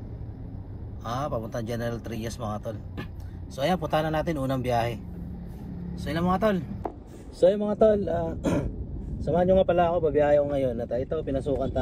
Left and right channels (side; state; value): both; identical; correlation 1.00